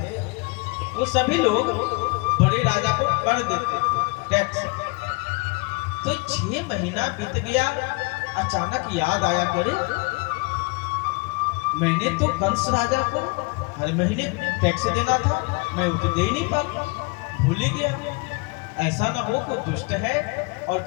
वो सभी लोग बड़े राजा को कर देते थे टैक्स। तो 6 महीना बीत गया, अचानक याद आया, करे मैंने तो कंस राजा को हर महीने टैक्स देना था, मैं वो तो दे ही नहीं पाता, भूल ही गया। ऐसा ना हो कोई दुष्ट है और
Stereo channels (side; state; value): right; quieter; 29.2 dB